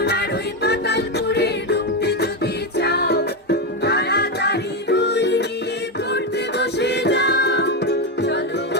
ওই পাতালপুরে ঢুকতে যদি চাও, তাড়াতাড়ি বই নিয়ে পড়তে বসে যাও। চলো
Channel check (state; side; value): normal; both; correlation 0.09